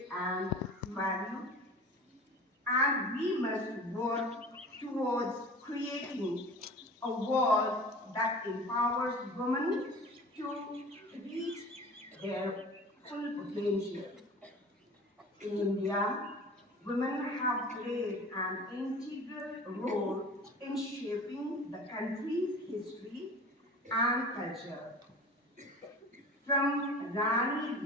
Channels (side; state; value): both; normal; correlation 0.39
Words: and valued, and we must work towards creating a world that empowers women to reach their full potential. In India, women have played an integral role in shaping the country's history and culture. From Rani